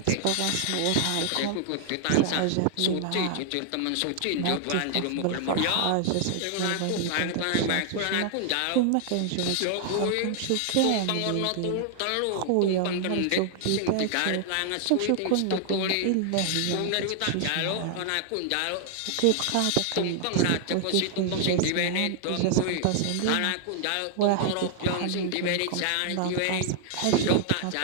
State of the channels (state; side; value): different; both; correlation 0.00